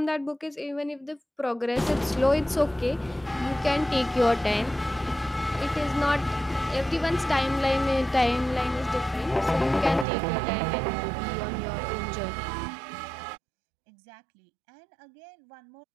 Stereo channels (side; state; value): left; drops out; at 10.1 s